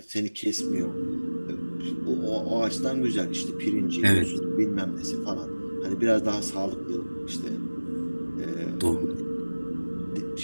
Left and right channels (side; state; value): both; inverted; correlation -1.00